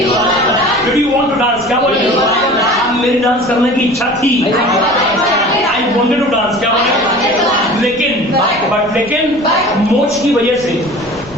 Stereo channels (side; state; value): left; noise; rumble, 22 dB below the sound